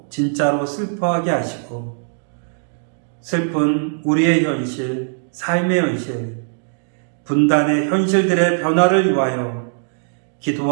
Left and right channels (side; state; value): left; silent; digital silence